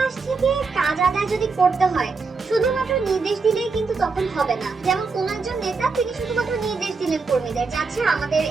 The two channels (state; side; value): quieter; left; 4.5 dB